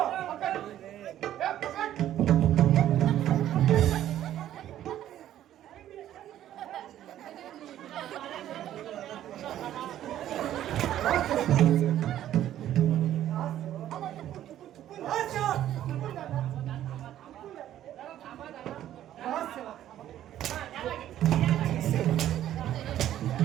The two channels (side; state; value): left; quieter; 12.0 dB